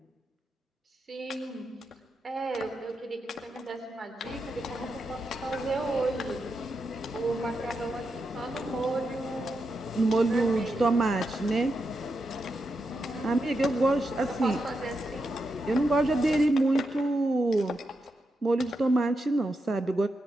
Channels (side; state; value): both; normal; correlation 0.86